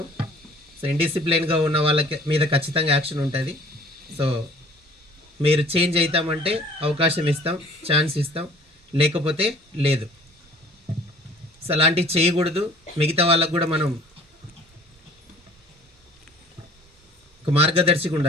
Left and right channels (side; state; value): both; normal; correlation 0.51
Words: సో ఇండిసిప్లైన్గా ఉన్న వాళ్ళకి మీద ఖచ్చితంగా యాక్షన్ ఉంటుంది. సో మీరు చేంజ్ అవుతామంటే అవకాశం ఇస్తాం, ఛాన్స్ ఇస్తాం, లేకపోతే లేదు. సో అలాంటివి చేయకూడదు. మిగతా వాళ్ళకు కూడా మనం ఒక మార్గదర్శిగా